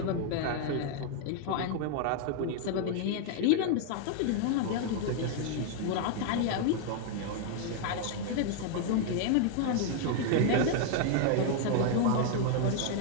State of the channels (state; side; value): different; both; correlation 0.00